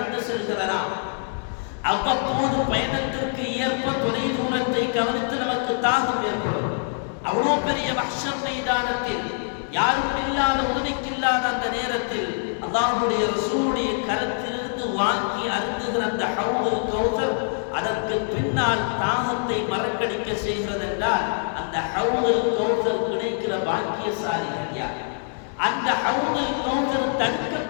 செல்கிறதாம். அவ்வப்போது பயணத்திற்கு ஏற்ப தொலை தூரத்தை கவனித்து நமக்கு தாகம் ஏற்படும். அவ்வளோ பெரிய மஹ்ஷர் மைதானத்தில் யாரும் இல்லாத உதவிக்கில்லாத அந்த நேரத்தில் அல்லாஹ்வுடைய ரசூலுடைய கரத்திலிருந்து வாங்கி அருந்துகிற அந்த ஹௌதுல் கௌசர் அதற்கு பின்னால் தாகத்தை மறக்கடிக்க செய்கிறது என்றால் அந்த ஹௌதுல் கௌசர் கிடைக்கிற பாக்கியசாலிகள் யார்? அந்த ஹௌதுல் கௌசர்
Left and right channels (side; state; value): right; silent; 62 dB below the other